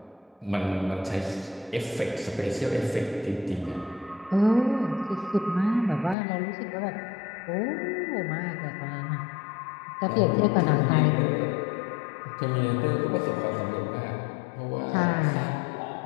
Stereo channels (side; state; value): right; drops out; at 6.2 s